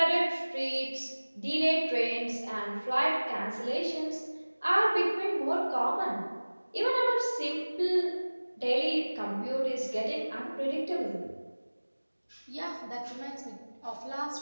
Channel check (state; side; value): inverted; both; correlation -1.00